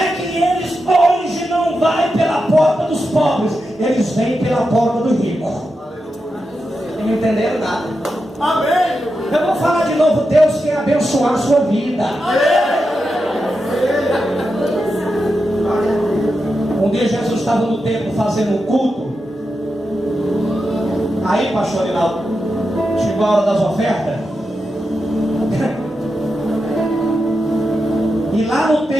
que eles hoje não vão pela porta dos pobres, eles vêm pela porta do rico. Não entenderam nada. Amém. Eu vou falar de novo. Deus quer abençoar a sua vida. Um dia Jesus estava no templo fazendo um culto. Aí, pastor Rinaldo, chegou a hora das ofertas. E lá no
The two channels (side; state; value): both; normal; correlation 0.88